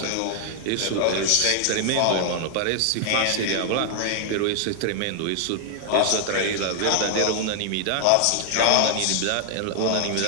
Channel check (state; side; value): different; both; correlation 0.00